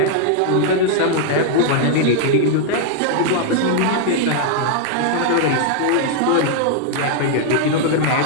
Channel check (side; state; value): both; different; correlation 0.00